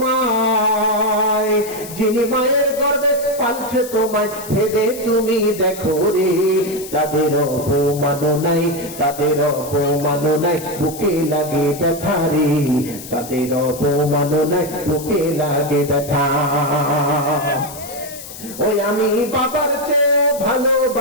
যিনি মায়ের গর্ভে পালছে তোমায়, ভেবে তুমি দেখো রে, তাদের অপমান নাই, তাদের অপমান নাই, বুকে লাগে ব্যথা রে, তাদের অপমান নাই, বুকে লাগে ব্যথা। ওই আমি বাবার চেয়েও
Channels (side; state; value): left; noise; hiss, 13 dB below the sound